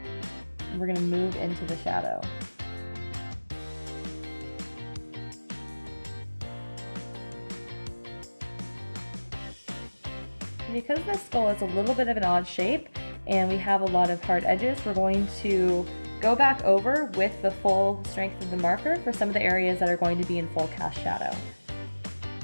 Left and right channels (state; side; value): inverted; both; correlation -1.00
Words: and we're going to move into the shadow. Because this skull is a little bit of an odd shape and we have a lot of hard edges, we're going to go back over with the full strength of the marker for some of the areas that are going to be in full cast shadow.